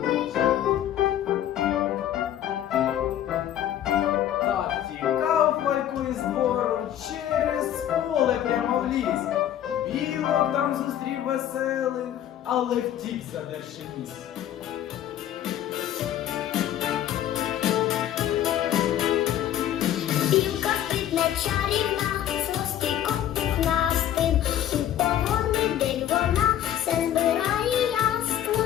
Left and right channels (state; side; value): quieter; right; 11.3 dB